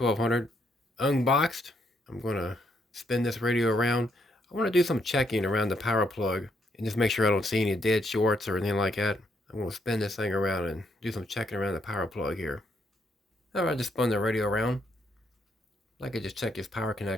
unboxed. I'm going to spin this radio around. I want to do some checking around the power plug and just make sure I don't see any dead shorts or anything like that. I'm going to spin this thing around and do some checking around the power plug here. Alright, just spun the radio around. I could just check this power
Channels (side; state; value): both; normal; correlation 0.74